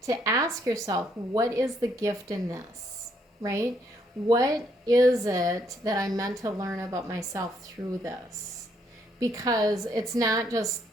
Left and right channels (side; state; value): both; normal; correlation 0.72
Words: to ask yourself, what is the gift in this, right? What is it that I'm meant to learn about myself through this? Because it's not